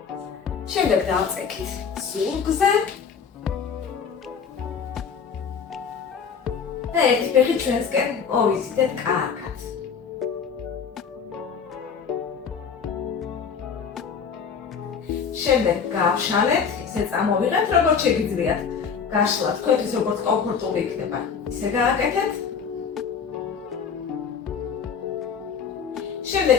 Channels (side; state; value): right; quieter; 6.4 dB